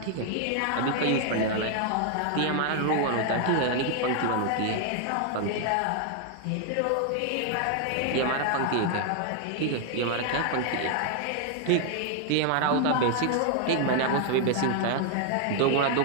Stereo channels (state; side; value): different; both; correlation 0.00